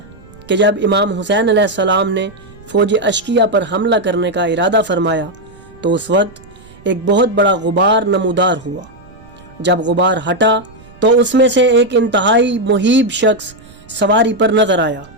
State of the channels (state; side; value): noise; right; rumble, 23 dB below the sound